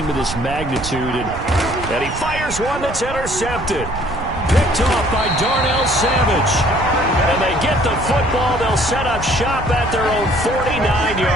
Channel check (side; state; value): right; noise; rumble, 10 dB below the sound